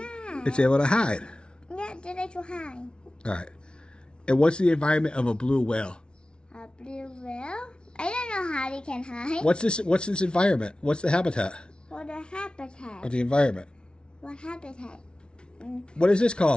It's able to hide. Yeah, they like to hide. All right. And what's the environment of a blue whale? A blue whale? I don't know how they can hide. What's this environment? What's the habitat What the habitat? of the environment? What habitat? What is this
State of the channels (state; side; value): late; right; 0.056 ms